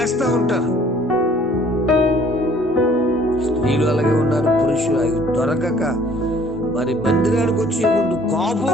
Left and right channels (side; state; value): both; normal; correlation 0.57